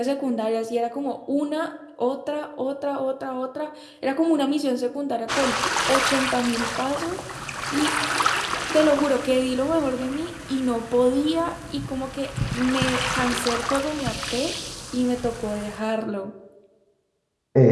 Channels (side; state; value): both; identical; correlation 1.00